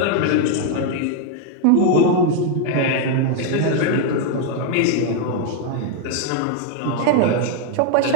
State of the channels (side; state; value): both; different; correlation 0.01